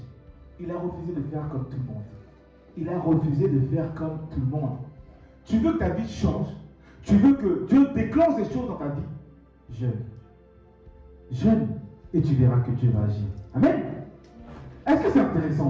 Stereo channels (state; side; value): identical; both; correlation 1.00